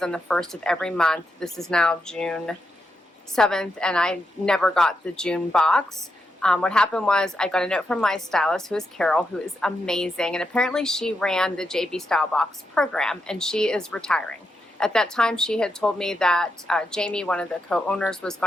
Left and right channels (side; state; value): both; normal; correlation 0.84